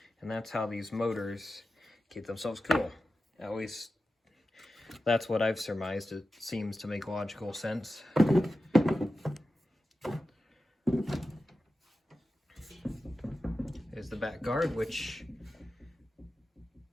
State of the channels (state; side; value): normal; both; correlation 0.92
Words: And that's how these motors keep themselves cool. At least, that's what I've surmised. It seems to make logical sense. There's the back guard, which